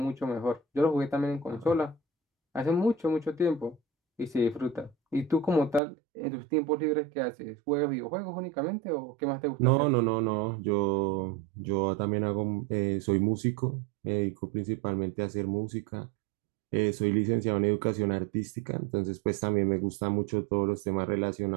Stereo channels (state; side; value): drops out; left; at 5.8 s